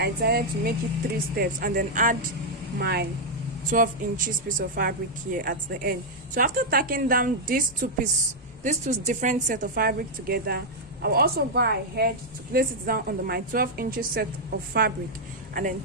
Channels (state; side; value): normal; both; correlation -0.03